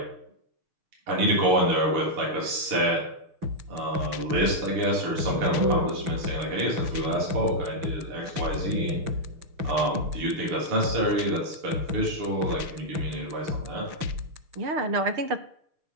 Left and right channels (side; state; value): left; late; 6.6 ms